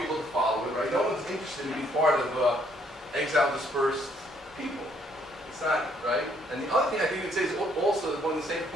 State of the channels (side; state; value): both; normal; correlation 0.67